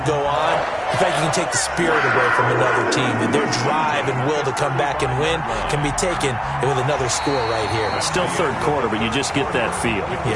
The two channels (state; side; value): identical; both; correlation 1.00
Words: go on, in fact, you can take the spirit away from another team. And their drive and will to come back and win can be taken with another score right here. Still third quarter, but you just get that feel.